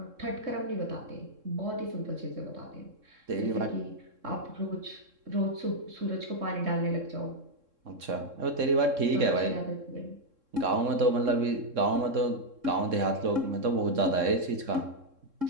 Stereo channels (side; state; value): left; late; 3.7 ms